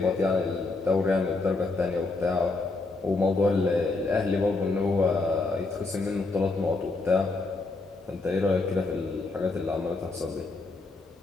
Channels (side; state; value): right; quieter; 3.4 dB